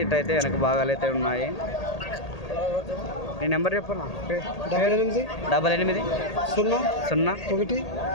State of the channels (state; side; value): late; right; 1.8 ms